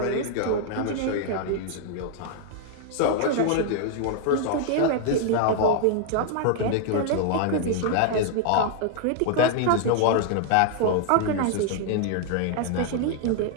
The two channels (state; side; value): different; both; correlation 0.00